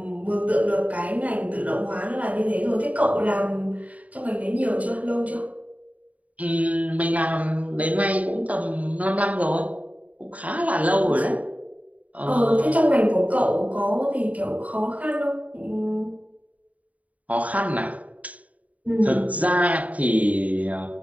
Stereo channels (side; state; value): left; late; 0.070 ms